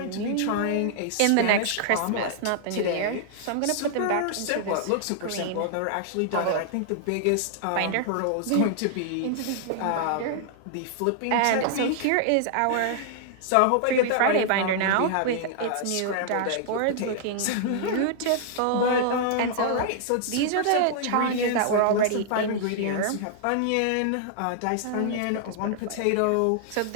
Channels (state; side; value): different; both; correlation -0.01